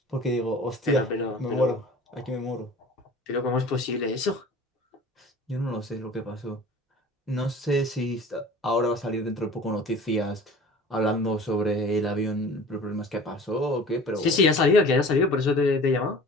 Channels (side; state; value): both; normal; correlation 0.43